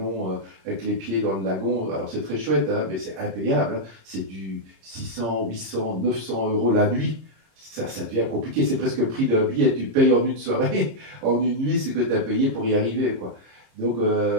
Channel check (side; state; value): left; late; 26 ms